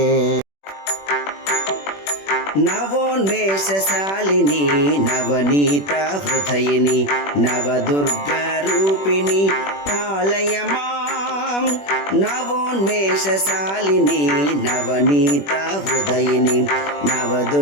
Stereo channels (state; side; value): late; right; 21 ms